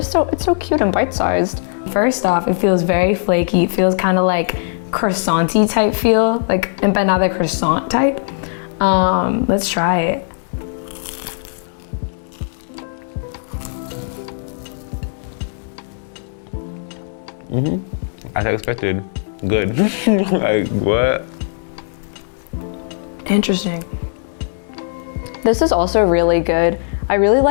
so cute and bite-sized. First off, it feels very flaky. It feels kind of like croissant-y type feel, like empanada croissant type. Let's try it. As I expected. Good. Like, what? Interesting. This is also really good. I really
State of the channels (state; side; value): silent; right; digital silence